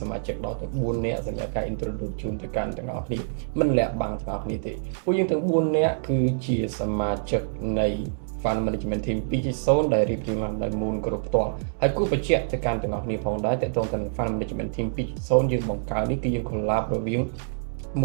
មាជិកដល់ទៅ4នាក់សម្រាប់ការ introduce ជូនទៅកាន់ទាំងអស់គ្នាមិនលាក់បាំងទាំងអស់គ្នាទេពួកយើងទាំង4នាក់គឺជាសមាជិកនៃ Fund Management Team 2.0 ដែលរៀបរៀងឡើងដោយ Moon គ្រប់ផ្ទាល់ហើយគូបញ្ជាក់ទៅកាន់ទាំងអស់គ្នាផងដែរតើតើទៅនឹង Fund Management Team 2.0 យើងបង្កើតនេះគឺយើង collab រវាង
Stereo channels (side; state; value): left; silent; digital silence